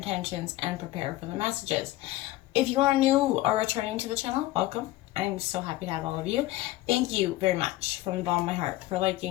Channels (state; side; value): quieter; right; 16.8 dB